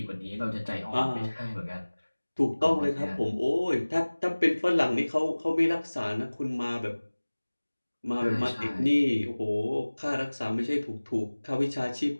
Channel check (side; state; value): both; inverted; correlation -1.00